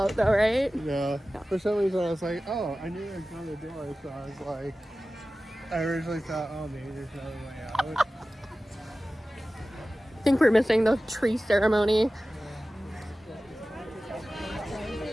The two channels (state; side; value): normal; both; correlation 0.96